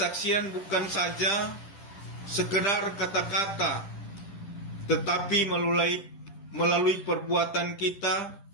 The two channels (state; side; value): late; right; 10 ms